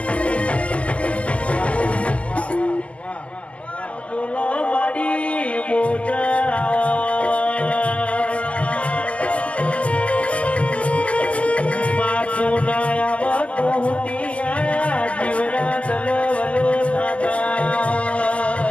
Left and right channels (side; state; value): right; late; 0.063 ms